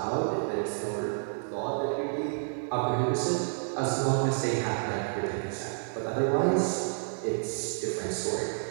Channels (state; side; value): silent; left; 58 dB below the other